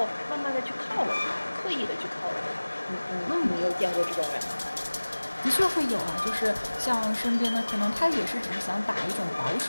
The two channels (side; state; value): both; inverted; correlation -1.00